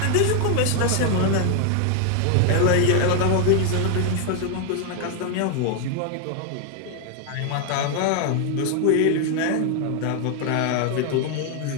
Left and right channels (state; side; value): different; both; correlation 0.00